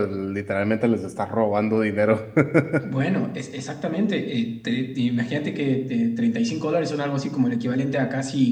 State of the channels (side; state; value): both; identical; correlation 1.00